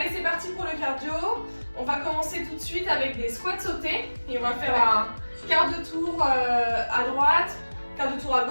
c'est parti pour le cardio. On va commencer tout de suite avec des squats sautés. Et on va faire un quart de tour à droite, quart de tour à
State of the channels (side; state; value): both; inverted; correlation -1.00